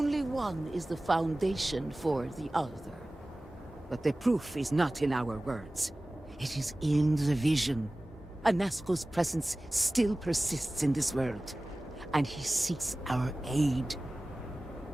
one is the foundation for the other. But the proof is not in our words. It is in the vision. Anasco's presence still persists in this world, and he seeks our aid.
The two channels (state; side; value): normal; both; correlation 0.97